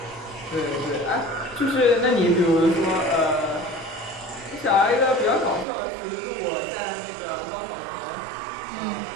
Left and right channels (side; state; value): left; drops out; at 5.7 s